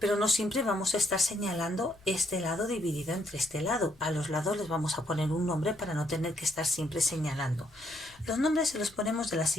no siempre vamos a estar señalando este lado dividido entre este lado. A los lados les vamos a poner un nombre para no tener que estar siempre señalando. Los nombres se los ponemos de la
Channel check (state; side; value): noise; left; rumble, 27 dB below the sound